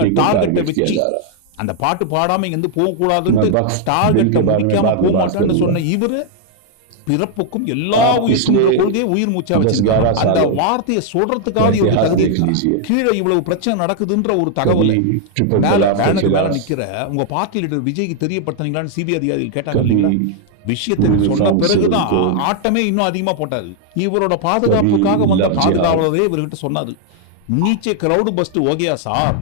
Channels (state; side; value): different; both; correlation 0.00